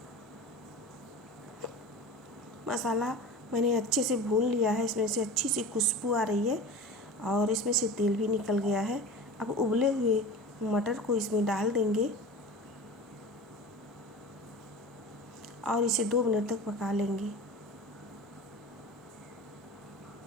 मसाला मैंने अच्छे से भून लिया है। इसमें से अच्छी सी खुशबू आ रही है और इसमें से तेल भी निकल गया है। अब उबले हुए मटर को इसमें डाल देंगे और इसे 2 मिनट तक पका लेंगे।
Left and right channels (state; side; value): normal; both; correlation 0.33